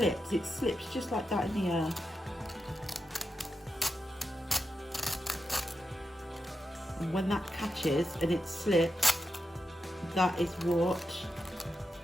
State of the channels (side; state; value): both; normal; correlation 0.88